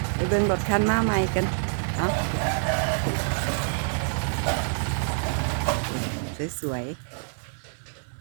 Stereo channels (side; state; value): left; silent; 61 dB below the other